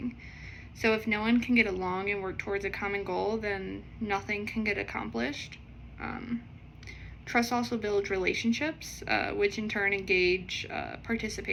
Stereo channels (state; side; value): identical; both; correlation 1.00